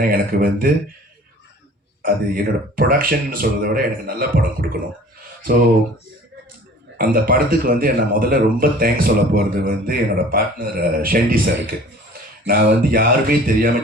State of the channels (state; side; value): normal; both; correlation 0.47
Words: எனக்கு வந்து அது என்னோடய ப்ரொடக்ஷன் சொல்கிறத விட எனக்கு நல்ல படம் கொடுக்கணும். ஸோ அந்த படத்துக்கு வந்து நான் முதல்ல ரொம்ப தேங்க்ஸ் சொல்ல போகிறது வந்து என்னோடய பார்ட்னர் ஷெண்டி சாருக்கு. நான் வந்து யாருமே